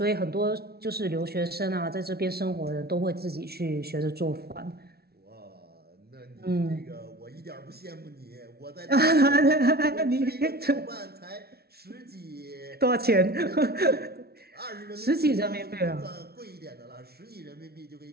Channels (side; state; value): left; late; 0.45 ms